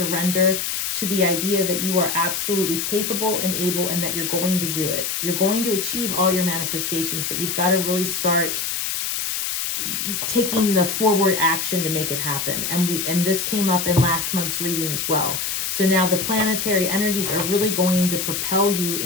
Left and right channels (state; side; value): noise; left; hiss, 2 dB below the sound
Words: to the idea that you are absolutely capable and able, and that you're going to do it. You're going to achieve all your manifestations, but you've got to really start taking the forward action to make it happen. And this came up in last month's reading as well. So now the planetary energies are really going to propel you